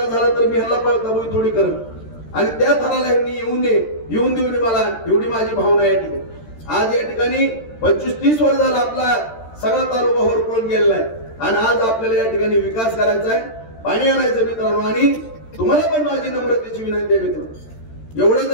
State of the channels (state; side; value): late; right; 13 ms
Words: झाला तर मी ह्याला पळताबोई थोडी करत आणि त्या थराला ह्यांनी येऊन देऊन मला एवढी माझी भावना या ठिकाणी. आज या ठिकाणी 25-30 वर्ष झाला आपला सगळा तालुका होरपळून गेलेला आहे आणि आज आपल्याला या ठिकाणी विकास करायचा आहे, पाणी आणायचं मित्रांनो. आणि तुम्हाला पण माझी नम्रतेची विनंती आहे मित्रांनो, एवढं